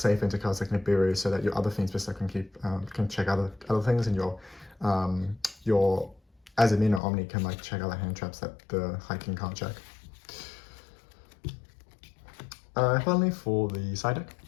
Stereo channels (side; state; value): right; drops out; at 7.0 s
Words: into cards like Nibiru, so that your other Fiendsmith can check other things, and your Azamina Omni can like check other hand traps that the High King can't check. Finally, for the side deck,